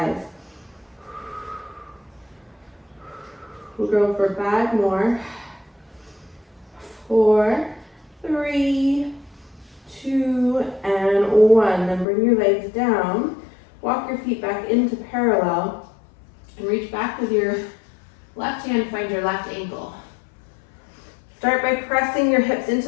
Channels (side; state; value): right; drops out; at 12.1 s